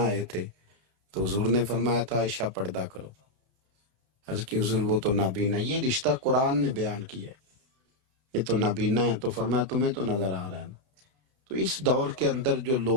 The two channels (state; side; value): late; left; 32 ms